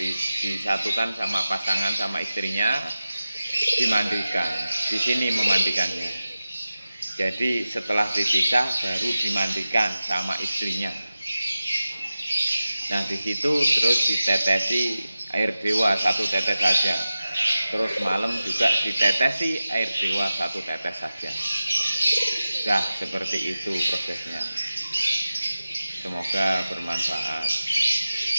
sama pasangan sama istrinya, dimandikan. Di sini memandikannya. Jadi setelah dipisah baru dimandikan sama istrinya. Nah, di situ terus ditetesi air dewa 1 tetes saja. Terus malam juga ditetesi air dewa 1 tetes saja. Dah, seperti itu prosesnya. Semoga bermanfaat.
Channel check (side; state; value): both; inverted; correlation -0.94